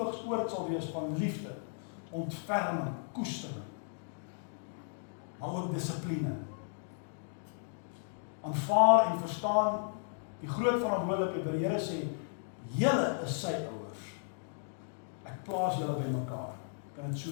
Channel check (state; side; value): silent; right; digital silence